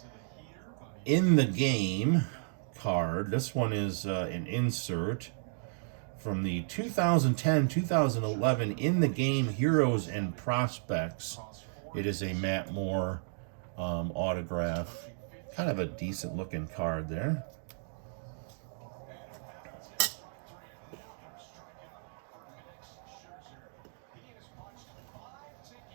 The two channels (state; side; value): silent; left; digital silence